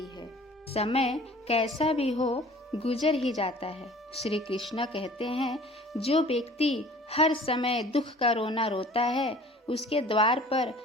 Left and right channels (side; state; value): both; normal; correlation 0.48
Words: है। समय कैसा भी हो गुजर ही जाता है। श्री कृष्ण कहते हैं, जो व्यक्ति हर समय दुख का रोना रोता है, उसके द्वार पर